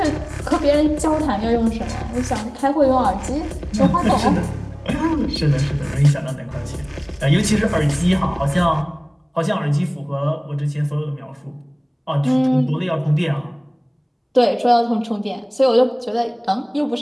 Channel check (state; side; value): identical; both; correlation 1.00